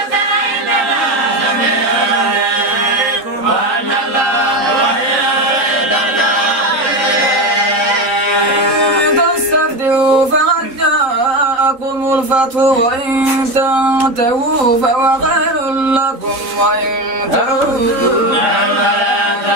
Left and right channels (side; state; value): left; late; 3.8 ms